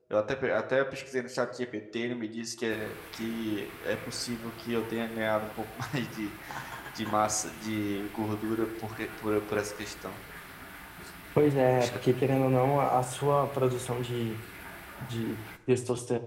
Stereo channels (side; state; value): both; identical; correlation 1.00